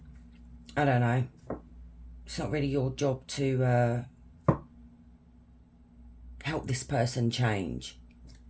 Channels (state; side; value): identical; both; correlation 1.00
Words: I don't know, it's not really your job to help this person change.